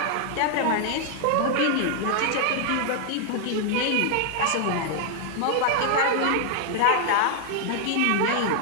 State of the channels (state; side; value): different; both; correlation 0.00